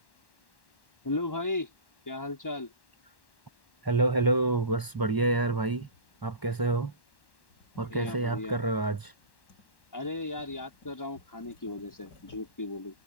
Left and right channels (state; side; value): late; right; 1.1 ms